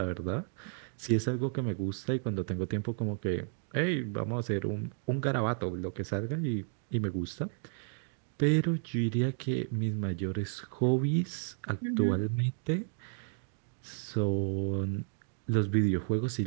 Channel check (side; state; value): left; silent; 56 dB below the other